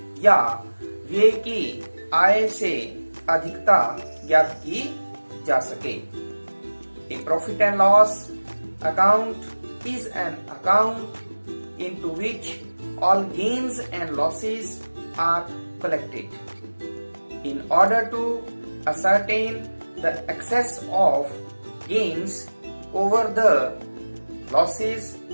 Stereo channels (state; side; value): inverted; both; correlation -1.00